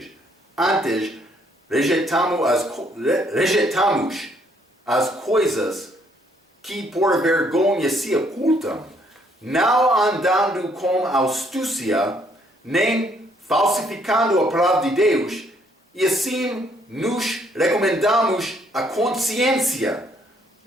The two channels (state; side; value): normal; both; correlation 0.67